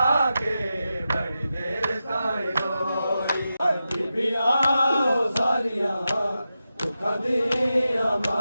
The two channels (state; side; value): inverted; both; correlation -0.91